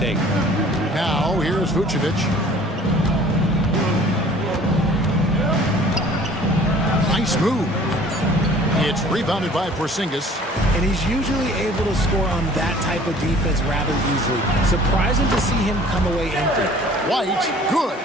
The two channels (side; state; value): both; normal; correlation 0.50